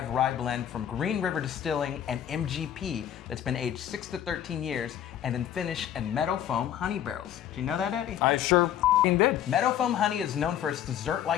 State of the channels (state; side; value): quieter; right; 10.5 dB